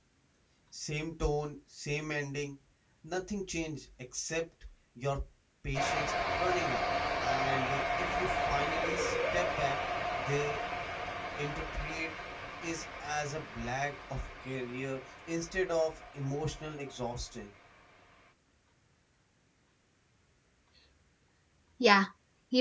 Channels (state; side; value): identical; both; correlation 1.00